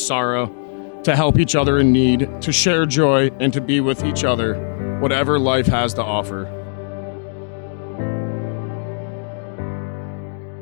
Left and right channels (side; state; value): right; silent; digital silence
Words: to help each other in need, to share joy, and to be with each other, whatever life has to offer.